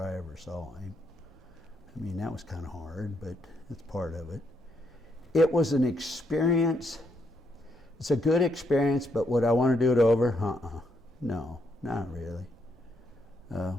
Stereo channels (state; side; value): normal; both; correlation 0.76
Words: I ever saw him. That was kind of hard, but it's part of it. It was an experience. It's a good experience, but would I want to do it over? No, not really.